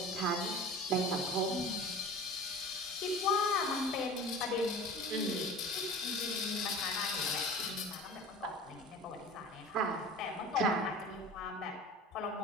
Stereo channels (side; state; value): both; normal; correlation 0.38